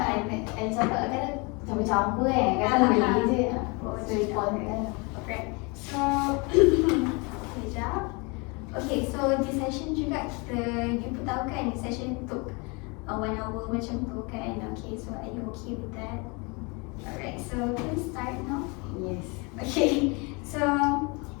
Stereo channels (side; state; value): right; quieter; 29.6 dB